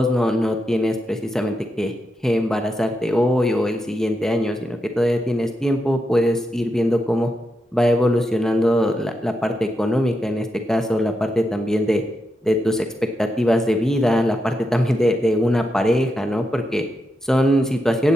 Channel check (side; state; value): both; normal; correlation 0.85